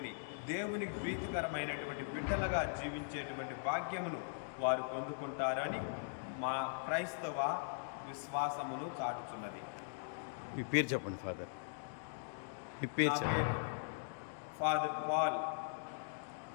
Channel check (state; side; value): silent; right; digital silence